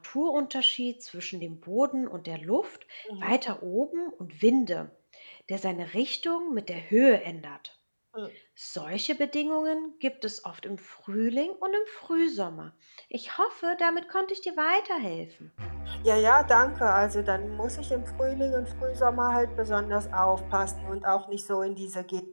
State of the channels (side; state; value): both; inverted; correlation -1.00